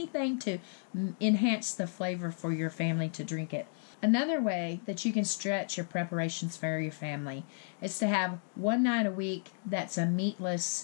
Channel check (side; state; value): right; silent; digital silence